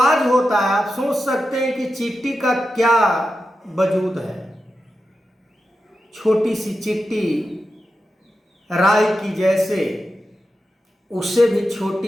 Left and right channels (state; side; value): normal; both; correlation 0.90